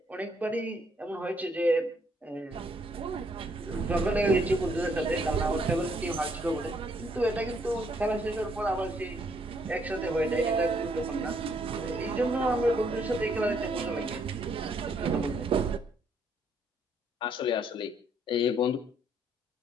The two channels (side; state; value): both; normal; correlation 0.69